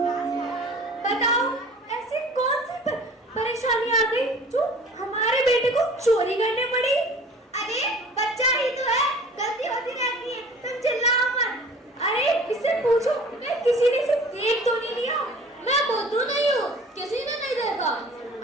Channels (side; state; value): both; normal; correlation 0.46